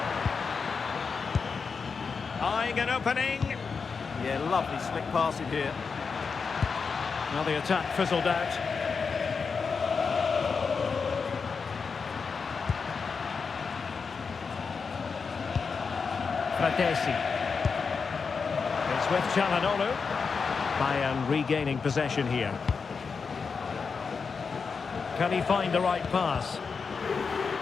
Eyeing an opening. Yeah, lovely slick passing here. Now the attack fizzled out. Fratesi. It's with Çalhanoğlu. Bayern regaining possession here. Can he find the right pass?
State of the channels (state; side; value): quieter; right; 5.3 dB